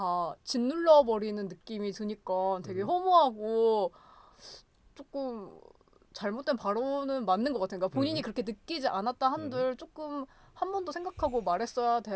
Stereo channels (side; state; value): both; identical; correlation 1.00